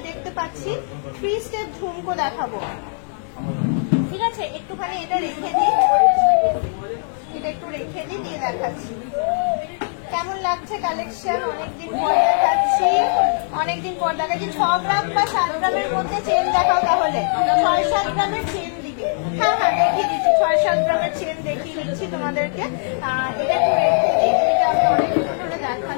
দেখতে পাচ্ছি 3 স্টেপ ঝুমকো দেখাবো, ঠিক আছে? একটুখানি এটা রেখে দিই, এটা একটু রেখে দিই, দিয়ে দেখাচ্ছি কেমন লাগছে কালেকশন। অনেকদিন পর দেখাচ্ছি, অনেকদিন পর দেখাচ্ছি। 6 গ্রাম বা 7 গ্রামের মধ্যে চেন দেখাও, তাহলে 6-7 গ্রামের চেন দিবে। হ্যাঁ হ্যাঁ দেখিয়ে দিচ্ছি, 6-7 গ্রামের চেন দেখিয়ে দিচ্ছি তোমাদেরকে। এটা একটু রেখে দিই, এটা আমি অনেকদিন ধরে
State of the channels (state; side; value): silent; right; digital silence